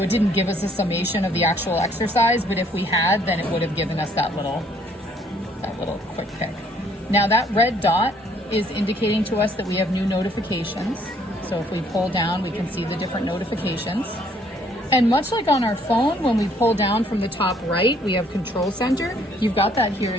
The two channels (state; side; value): normal; both; correlation 0.64